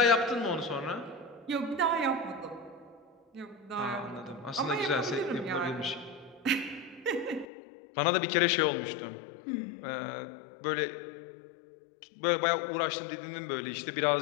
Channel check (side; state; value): right; drops out; at 7.5 s